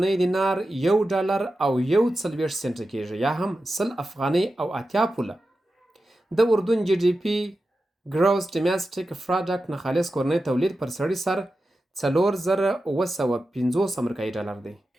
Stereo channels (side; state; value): both; normal; correlation 0.92